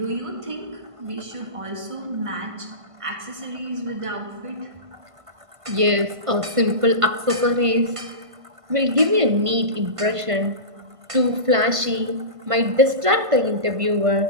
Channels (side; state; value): left; late; 1.5 ms